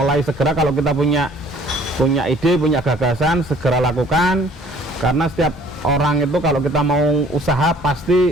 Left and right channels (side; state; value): both; normal; correlation 0.56